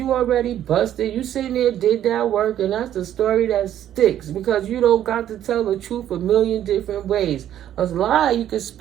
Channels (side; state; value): left; quieter; 11.2 dB